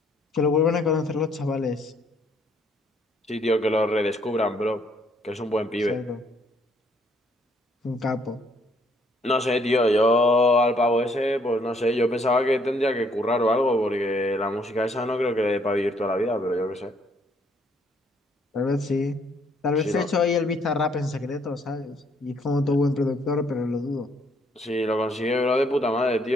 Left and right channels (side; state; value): both; normal; correlation 0.67